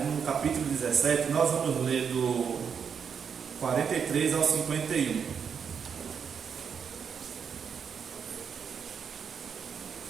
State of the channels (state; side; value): quieter; left; 6.9 dB